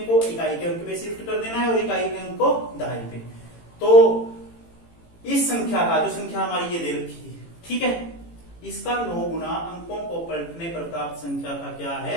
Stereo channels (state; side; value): late; right; 18 ms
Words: को इकाई के अंक पे शिफ्ट कर देना है और इकाई के अंक को दाई पे। तो इस संख्या का, जो संख्या हमारी ये दे रखी है, ठीक है, इसका 9 गुना अंकों को पलटने पर प्राप्त संख्या का क्या है